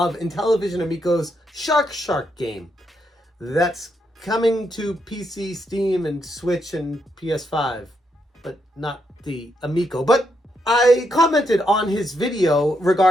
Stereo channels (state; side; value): normal; both; correlation 0.79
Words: Intellivision Amico's Shark game. That's coming to PC, Steam, and Switch, and PS5, but not the Amico. But I commented on his video